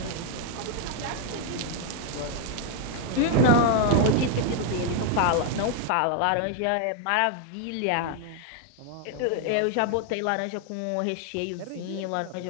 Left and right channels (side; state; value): both; different; correlation 0.01